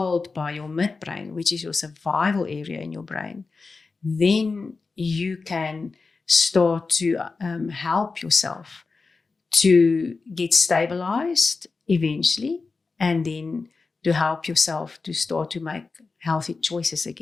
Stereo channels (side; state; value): right; quieter; 4.2 dB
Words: by your midbrain, which is your survival area in your brain, then you can start to help yourself to get stabilized eventually, and then to help yourself to start to make healthy choices